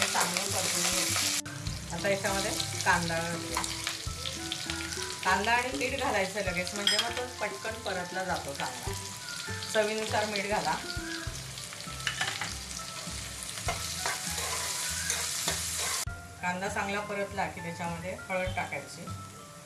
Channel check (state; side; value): identical; both; correlation 1.00